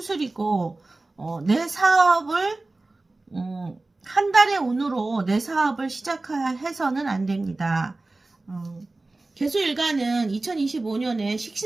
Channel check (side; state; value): left; quieter; 3.1 dB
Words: 내 사업을 한 달의 운으로 내 사업을 시작해서는 안 됩니다. 개수일간은 2025년에